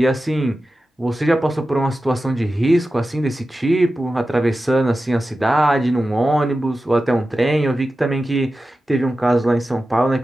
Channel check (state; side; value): normal; both; correlation 0.93